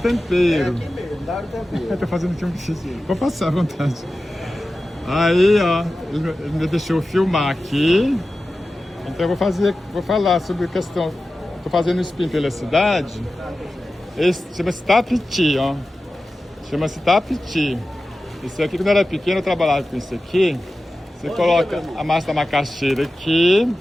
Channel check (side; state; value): both; normal; correlation 0.94